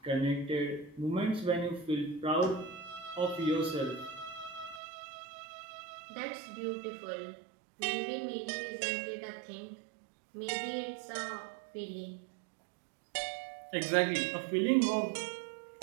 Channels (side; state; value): left; drops out; at 4.8 s